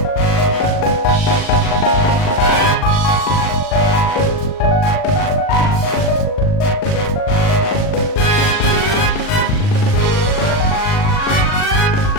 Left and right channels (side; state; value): right; late; 39 ms